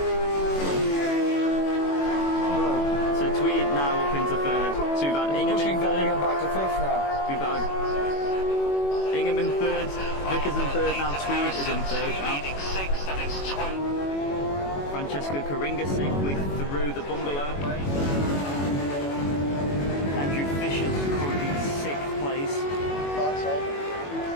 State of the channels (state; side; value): late; right; 21 ms